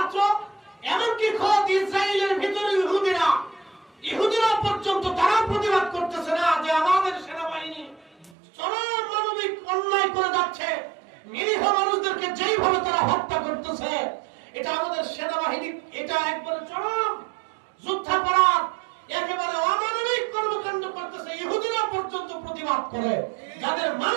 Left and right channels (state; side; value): drops out; left; at 8.3 s